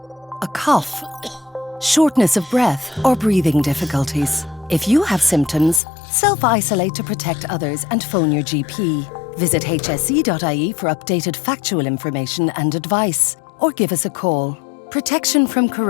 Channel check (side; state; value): right; drops out; at 5.8 s